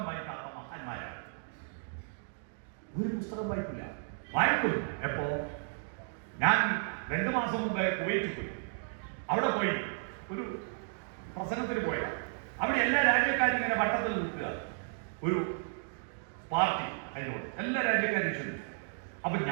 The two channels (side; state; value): left; silent; 55 dB below the other